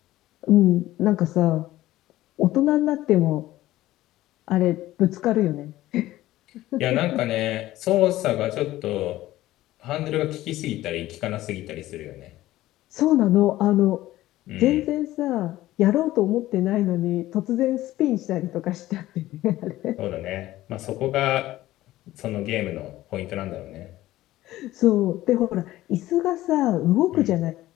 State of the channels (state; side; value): quieter; right; 15.7 dB